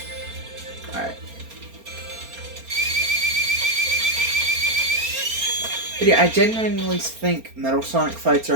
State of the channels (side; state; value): left; late; 4.3 ms